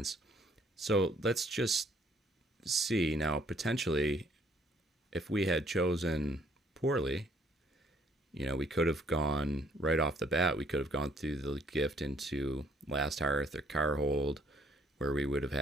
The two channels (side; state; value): both; normal; correlation 0.64